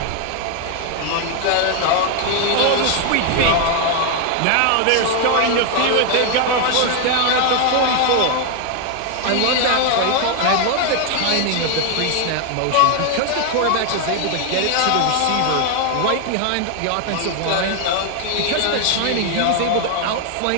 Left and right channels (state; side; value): different; both; correlation 0.01